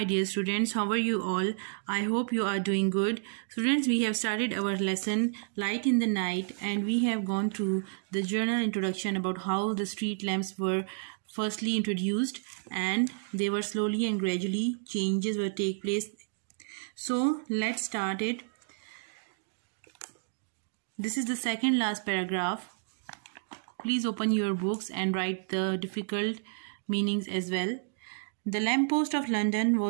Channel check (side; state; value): left; silent; digital silence